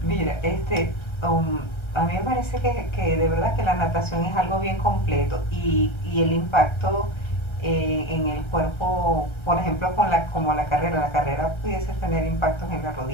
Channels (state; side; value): late; right; 1.3 ms